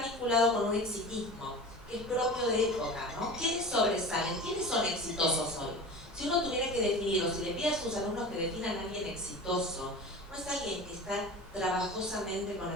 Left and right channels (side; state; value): left; noise; rumble, 22 dB below the sound